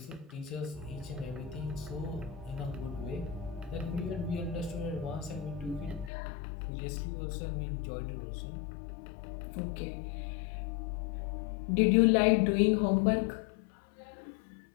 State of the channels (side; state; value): right; drops out; at 6.1 s